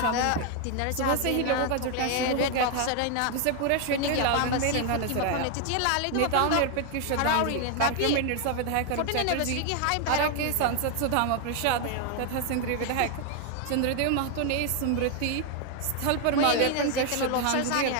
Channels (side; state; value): both; different; correlation 0.00